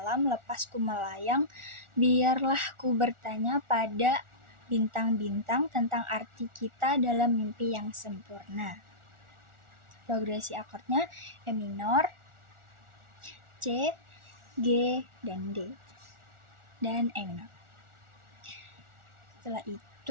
lepas ku melayang, biarlah ku bertanya pada bintang-bintang tentang arti kita dalam mimpi yang sempurna. Progresi akordnya E minor, C, G, dan D, dan E minor. Setelah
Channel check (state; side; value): late; left; 1.4 ms